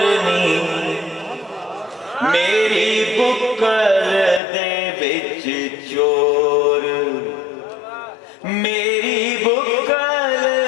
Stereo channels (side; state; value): right; drops out; at 4.4 s